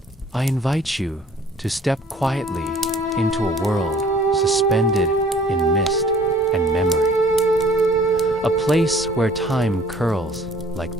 I invite you to step quietly into a world suspended in mist and memory. A place where time curls like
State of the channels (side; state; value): both; normal; correlation 0.53